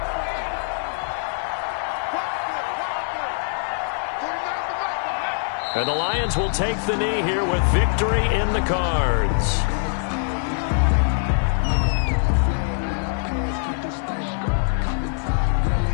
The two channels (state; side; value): silent; right; digital silence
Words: And the Lions will take the knee here with victory in the cards.